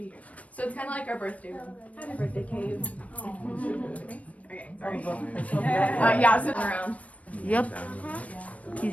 here. So it's kind of like our birthday room. Happy birthday, cave. Okay, sorry. Yeah, sitting around. Yep.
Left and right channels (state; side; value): late; right; 0.067 ms